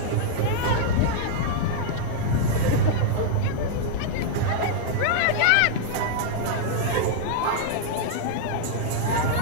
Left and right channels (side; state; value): both; different; correlation -0.01